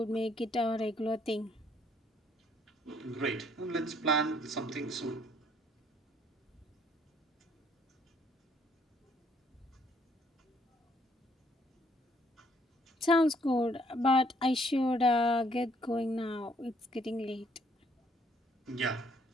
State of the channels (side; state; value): both; normal; correlation 0.66